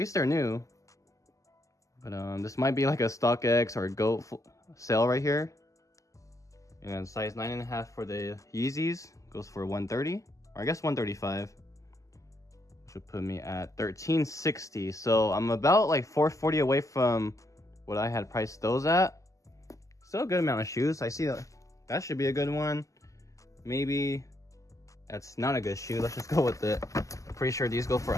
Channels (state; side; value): late; right; 0.16 ms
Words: they're new. But this might be like a StockX or a GOAT sale right here. And size 9.5 for the Yeezys goes for 130, or I guess 135, which would put me at 1360. So I'm about like 440 away from what I had priced those at. Still a good amount of shoes. I see that should be a good one. Maybe that's not a good shoe. Let's just go with it. Pretty sure these go for